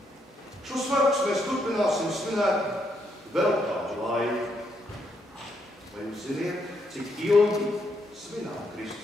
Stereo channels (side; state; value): both; normal; correlation 0.76